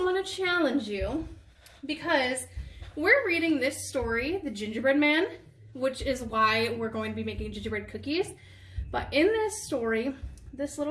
want to challenge you because we're reading this story, The Gingerbread Man, which is why we're going to be making gingerbread cookies. But in this story, this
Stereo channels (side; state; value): both; identical; correlation 1.00